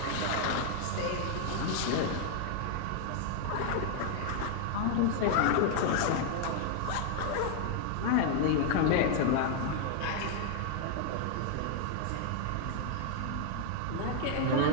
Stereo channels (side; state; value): both; different; correlation 0.00